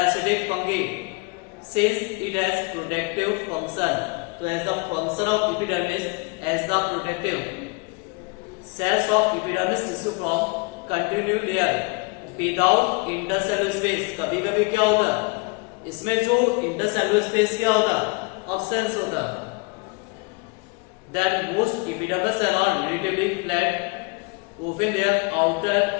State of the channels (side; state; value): right; quieter; 30.2 dB